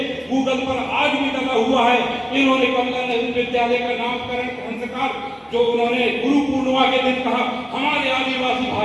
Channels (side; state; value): both; identical; correlation 1.00